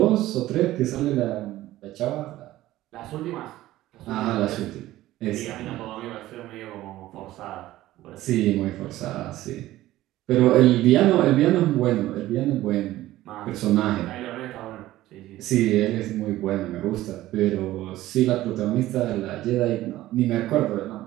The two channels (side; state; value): left; quieter; 15.6 dB